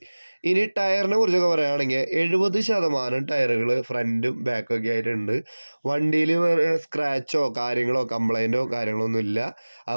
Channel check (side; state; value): both; inverted; correlation -1.00